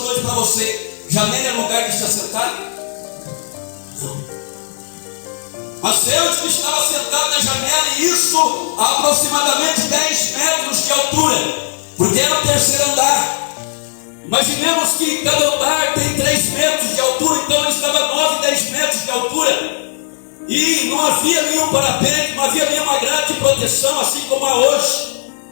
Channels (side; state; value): right; silent; digital silence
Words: para você: janela é lugar de se assentar? Não. Mas Eutico estava sentado na janela, e isso a aproximadamente 10 metros de altura, porque era o terceiro andar. Imaginemos que cada andar tem 3 metros de altura, então ele estava 9, 10 metros de altura. E não havia nenhum parapeito, não havia nenhuma grade de proteção, assim como há hoje.